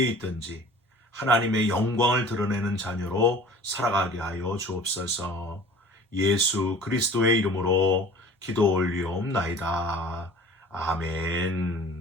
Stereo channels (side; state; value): both; normal; correlation 0.45